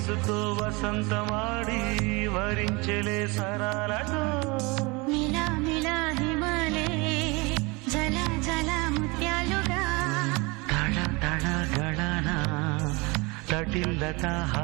వయసుతో వసంతమాడి వరించెలే సరాలతో మిలా మిలా హిమాలే జల జల ముత్యాలుగా తళ తళ గళన తటిల్లత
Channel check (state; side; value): quieter; left; 26.3 dB